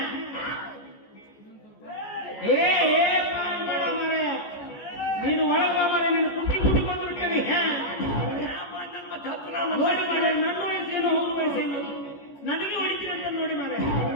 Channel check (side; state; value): right; late; 14 ms